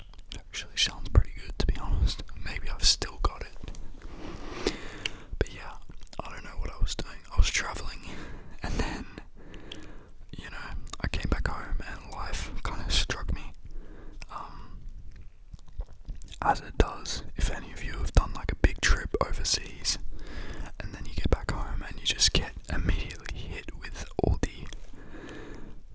It actually sounds pretty good, to be honest. Maybe I've still got it. But yeah, I don't know what I was doing. I was traveling, and then, I came back home and life kind of struck me. As it does, if any of you have done like a big trip overseas, and then you get back home and you just get immediately hit with all the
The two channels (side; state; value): both; identical; correlation 1.00